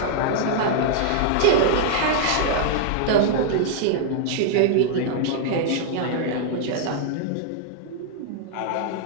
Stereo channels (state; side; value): different; both; correlation -0.01